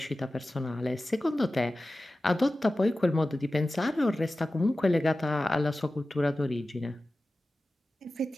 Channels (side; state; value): both; normal; correlation 0.95